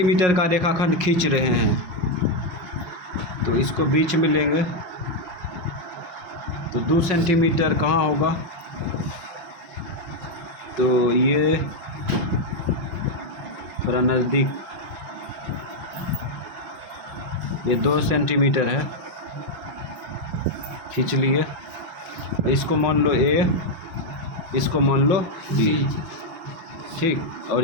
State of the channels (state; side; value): late; left; 5.9 ms